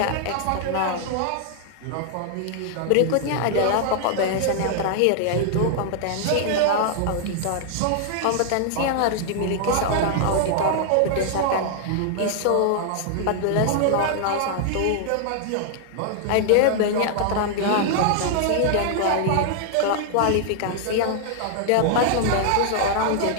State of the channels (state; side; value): different; both; correlation 0.00